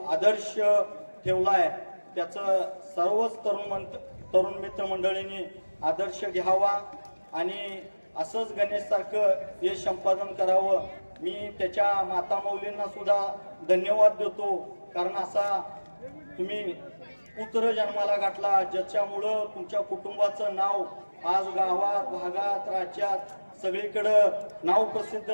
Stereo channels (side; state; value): both; inverted; correlation -1.00